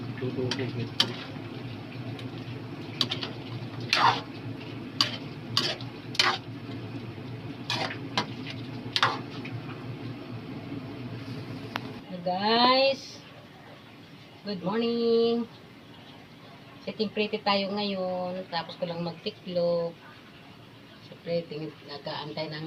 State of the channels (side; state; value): both; identical; correlation 1.00